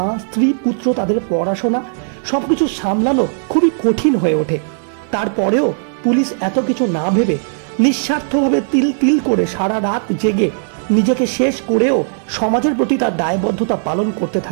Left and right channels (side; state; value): left; silent; digital silence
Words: স্ত্রী পুত্র তাদের পড়াশোনা সবকিছু সামলানো খুবই কঠিন হয়ে ওঠে। তারপরেও পুলিশ এত কিছু না ভেবে নিঃস্বার্থভাবে তিল তিল করে সারা রাত জেগে নিজেকে শেষ করেও সমাজের প্রতি তার দায়বদ্ধতা পালন করতে